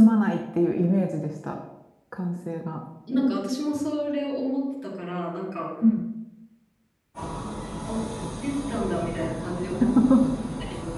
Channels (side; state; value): both; identical; correlation 1.00